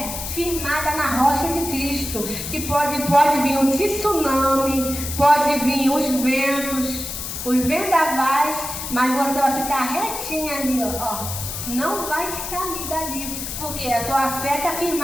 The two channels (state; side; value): noise; left; hiss, 6 dB below the sound